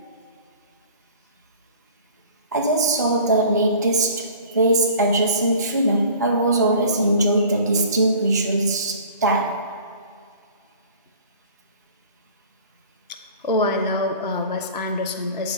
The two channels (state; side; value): inverted; both; correlation -0.46